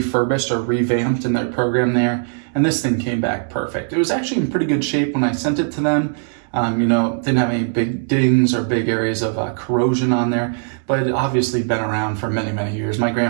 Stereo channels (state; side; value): silent; left; digital silence